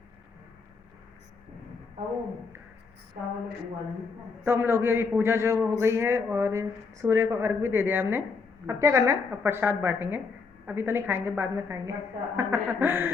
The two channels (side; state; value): right; quieter; 4.8 dB